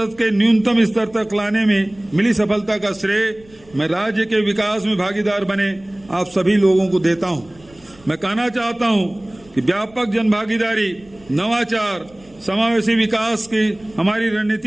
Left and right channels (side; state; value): right; noise; rumble, 27 dB below the sound